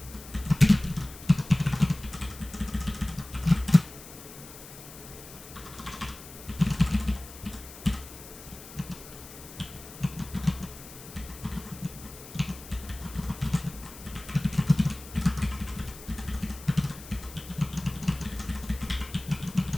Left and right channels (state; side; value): noise; left; hiss, 16 dB below the sound